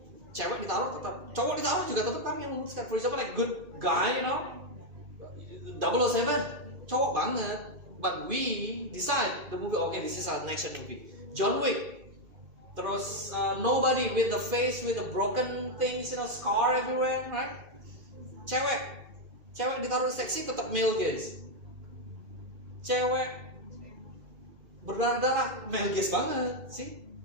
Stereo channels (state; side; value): late; left; 2.5 ms